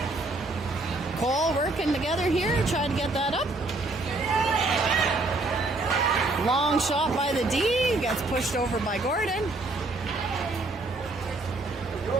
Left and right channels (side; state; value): left; quieter; 3.0 dB